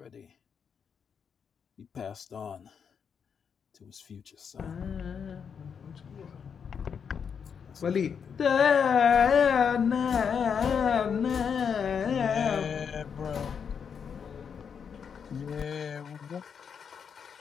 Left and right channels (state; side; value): quieter; right; 6.9 dB